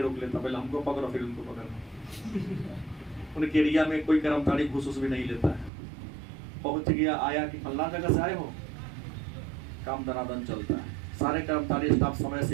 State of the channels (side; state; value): left; drops out; at 5.7 s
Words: रोक लेता, पहले हमको पकड़ो फिर उनको पकड़ो। उनके एरिया में कोई कर्मचारी घूस भी नहीं लेता है। पहुंच गया, आया कि फल्ला जगह से आए हो, काम दनादन चलता है। सारे कर्मचारी स्टाफ समय